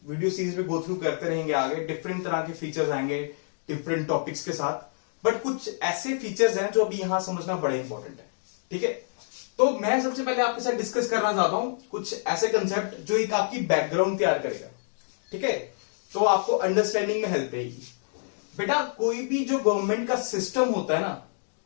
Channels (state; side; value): silent; right; digital silence